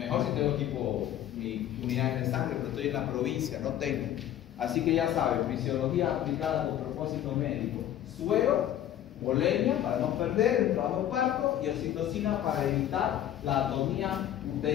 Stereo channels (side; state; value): right; quieter; 11.5 dB